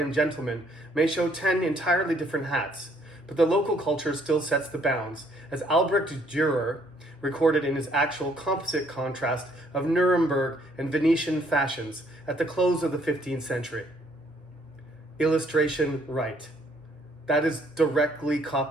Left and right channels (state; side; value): normal; both; correlation 0.66